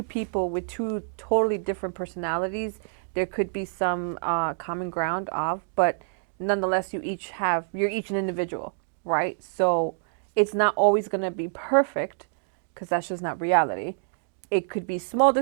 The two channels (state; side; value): silent; left; digital silence